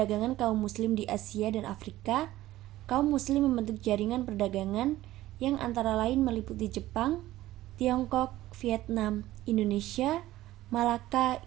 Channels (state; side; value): quieter; left; 15.6 dB